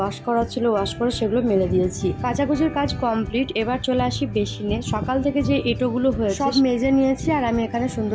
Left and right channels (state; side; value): identical; both; correlation 1.00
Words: করা ছিল ওয়াশ করে সেগুলো মেলে দিয়েছি। কাচাকুচির কাজ কমপ্লিট। এবার চলে আসি বেসিনে। সকাল থেকে যে এঁটোগুলো হয়েছে সব মেজে নিয়েছি আর আমি এখানে